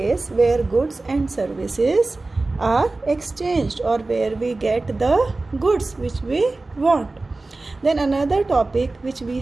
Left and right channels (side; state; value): left; quieter; 3.3 dB